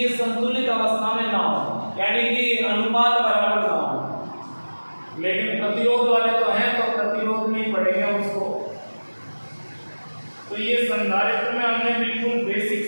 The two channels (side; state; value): both; inverted; correlation -1.00